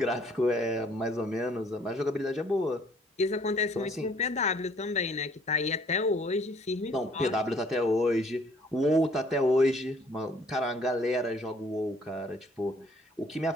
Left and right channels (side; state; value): both; normal; correlation 0.60